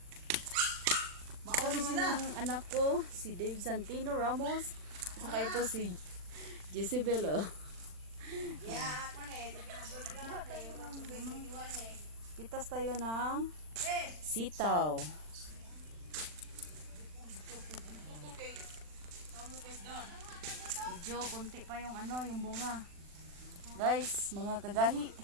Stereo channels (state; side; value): late; left; 40 ms